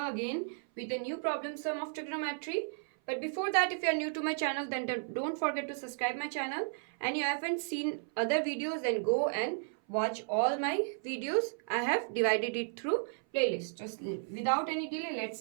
again with a new problem sum of trigonometry. But before that, if you are new to my channel, then don't forget to subscribe my channel. And you haven't seen other videos, then go and watch all my videos. I have divided it through playlist. Just without any delay, let's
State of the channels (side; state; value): left; silent; 55 dB below the other